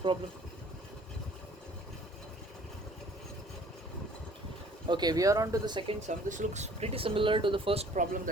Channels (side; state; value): both; normal; correlation 0.54